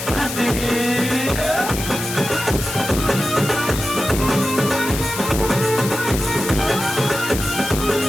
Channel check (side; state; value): left; noise; hiss, 7 dB below the sound